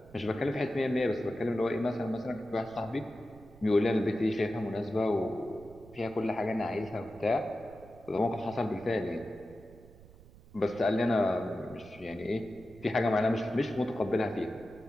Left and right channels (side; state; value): right; noise; rumble, 22 dB below the sound